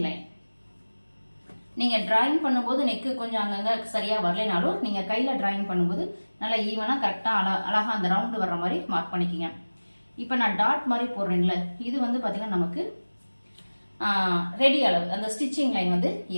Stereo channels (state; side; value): inverted; both; correlation -1.00